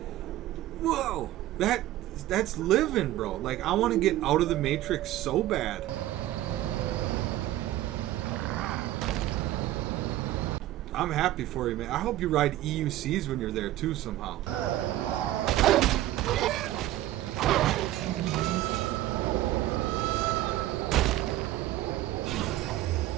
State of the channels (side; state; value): left; quieter; 14.8 dB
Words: whoa, that's living, bro. Like, I want to get out of the Matrix so bad. I'm happy for you, man. I hope you ride EUCs when you're there too somehow.